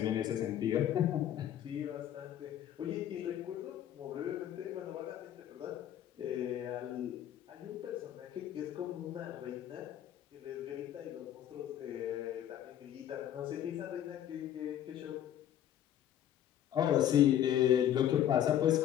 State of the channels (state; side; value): quieter; right; 11.0 dB